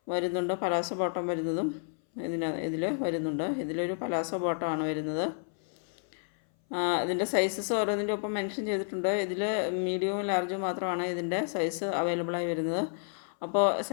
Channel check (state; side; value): silent; right; 57 dB below the other